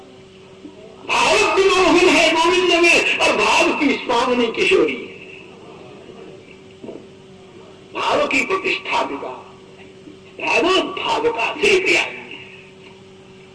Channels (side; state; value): both; identical; correlation 1.00